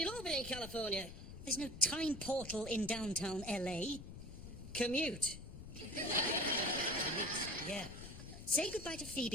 all be in California. There's no time portal in downtown LA. Commute. Yeah. Say goodbye to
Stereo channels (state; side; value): noise; left; rumble, 12 dB below the sound